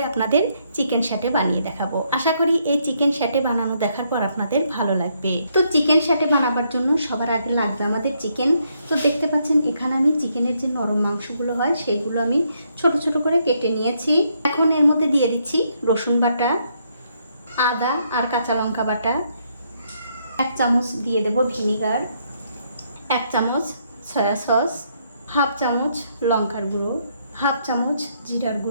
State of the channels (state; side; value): inverted; both; correlation -0.74